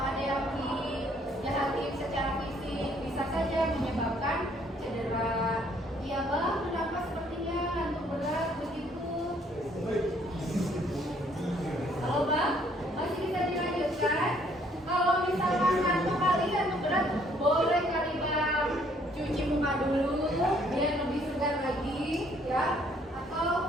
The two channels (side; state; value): both; normal; correlation 0.64